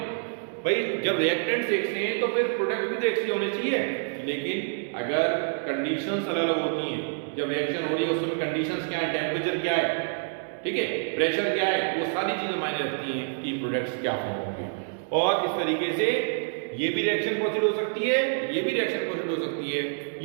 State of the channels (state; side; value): silent; left; digital silence